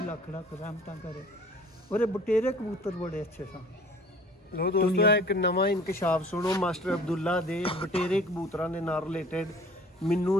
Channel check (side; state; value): both; normal; correlation 0.50